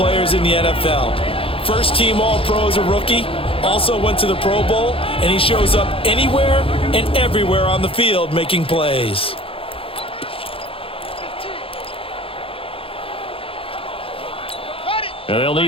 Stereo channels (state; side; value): late; right; 0.27 ms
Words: in the NFL. First-team All-Pro as a rookie. Also went to the Pro Bowl, and he shows up anywhere and everywhere on the field making plays. And they'll